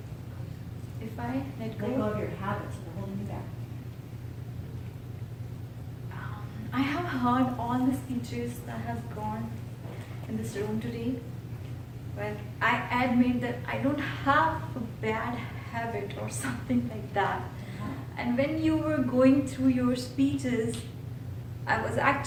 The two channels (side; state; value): both; identical; correlation 1.00